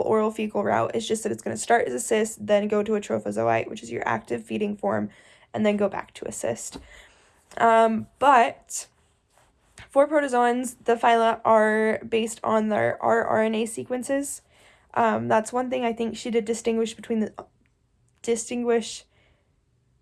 fecal route. It's just that it's going to start as a cyst, then go to a trophozoite, which is your active feeding form, and then go back to a cyst. But for protozoans, the phyla are based on their rRNA sequences. That's one thing I think she did distinguish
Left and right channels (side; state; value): both; identical; correlation 1.00